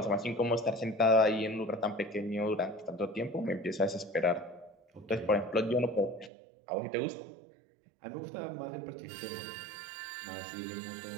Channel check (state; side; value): drops out; left; at 6.3 s